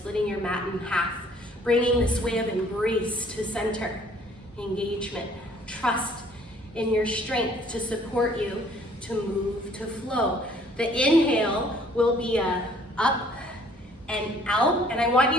your mat in half, bringing this way of embrace to center. Engagement. Trust in your strength to support you to move, to flow. The inhale will be a up and out, and I want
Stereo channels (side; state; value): both; normal; correlation 0.58